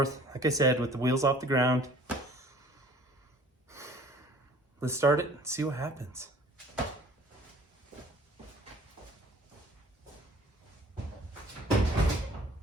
like I said, with the wheels off the ground. let's start it and see what happens.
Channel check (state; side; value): normal; both; correlation 0.51